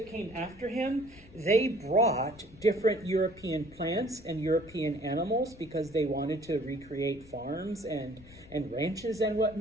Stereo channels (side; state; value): left; noise; rumble, 23 dB below the sound